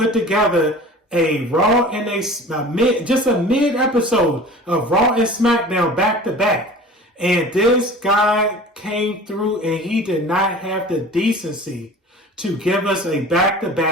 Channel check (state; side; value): normal; both; correlation 0.41